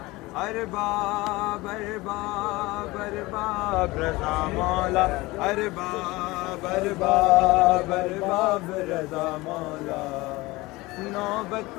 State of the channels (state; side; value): quieter; right; 21.1 dB